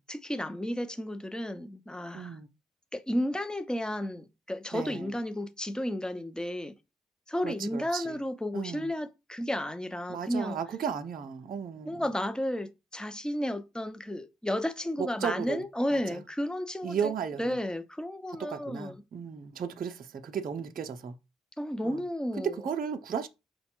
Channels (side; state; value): both; normal; correlation 0.83